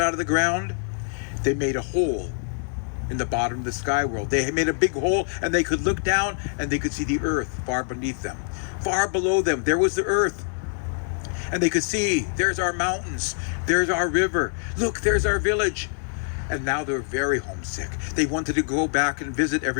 out of the ground, they made a hole in the bottom of the sky world. They made a big hole, and they could look down and they could see the earth far beneath them. Far below them, there was the earth. And they could see, there's our mountains, there's our river, look, there's our village. And now they're very homesick. They wanted to go back and visit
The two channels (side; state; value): right; silent; 62 dB below the other